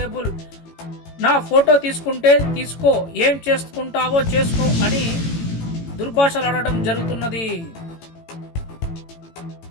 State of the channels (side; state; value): right; late; 18 ms